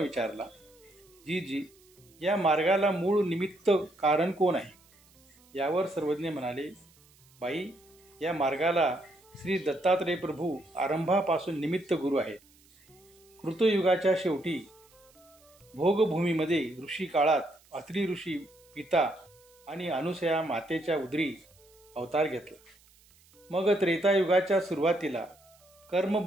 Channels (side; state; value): right; noise; hiss, 29 dB below the sound